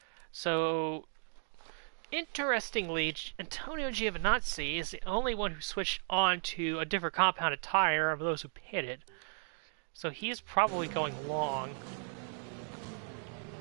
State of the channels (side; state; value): left; silent; 54 dB below the other